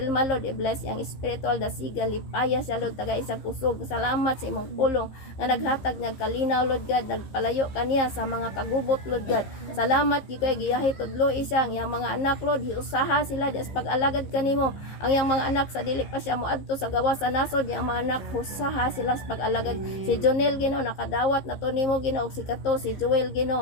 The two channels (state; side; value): late; right; 15 ms